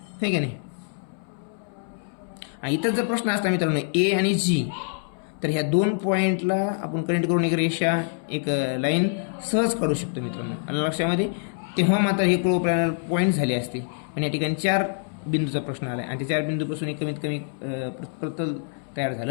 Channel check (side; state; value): right; silent; 61 dB below the other